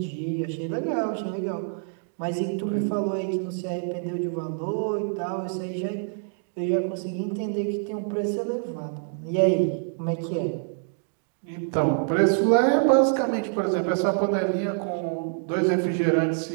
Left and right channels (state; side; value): silent; left; digital silence